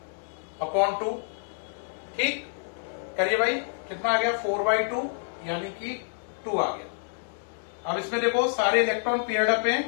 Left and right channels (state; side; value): silent; right; digital silence